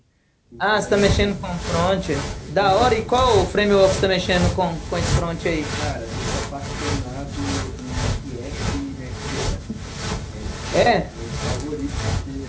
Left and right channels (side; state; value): both; identical; correlation 1.00